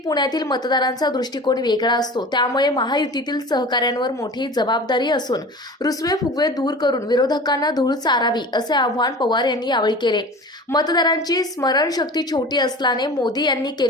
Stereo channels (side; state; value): both; normal; correlation 0.37